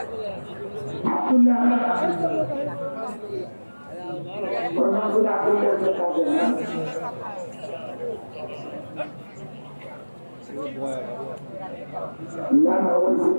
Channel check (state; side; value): inverted; both; correlation -1.00